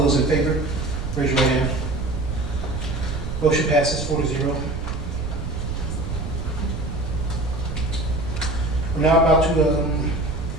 those in favor, raise your right hand. Motion passes 4-0. We're now about to,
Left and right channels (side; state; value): right; noise; rumble, 6 dB below the sound